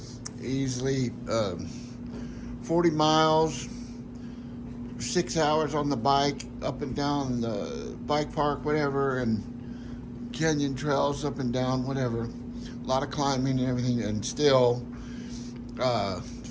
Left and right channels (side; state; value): both; identical; correlation 1.00